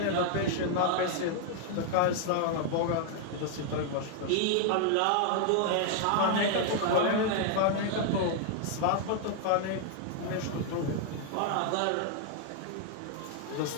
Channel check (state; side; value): different; both; correlation 0.00